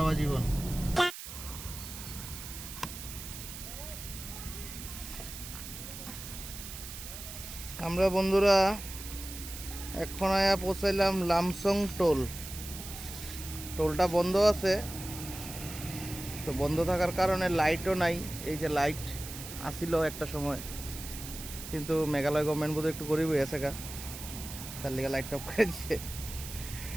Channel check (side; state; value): right; noise; hiss, 10 dB below the sound